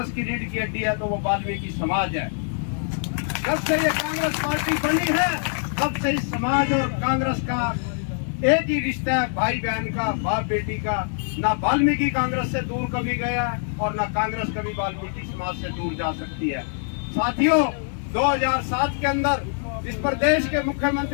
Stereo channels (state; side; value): silent; right; 62 dB below the other